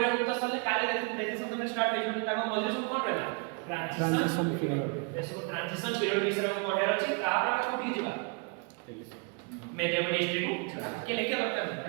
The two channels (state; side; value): quieter; left; 34.5 dB